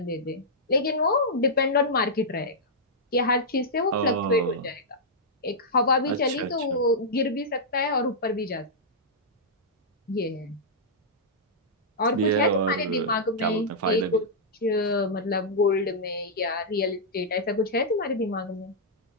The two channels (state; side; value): normal; both; correlation -0.10